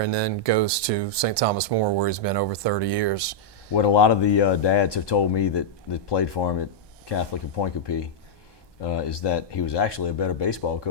then goes to St. Thomas More, where he's been over 30 years. What a lot of the dads have told me that played for him at Catholic and Pointe Coupee is that he was actually a better baseball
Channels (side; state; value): right; late; 1.2 ms